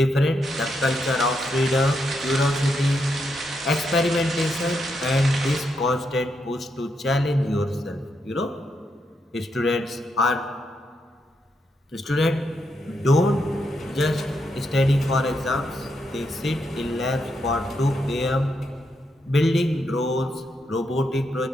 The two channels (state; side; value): normal; both; correlation 0.81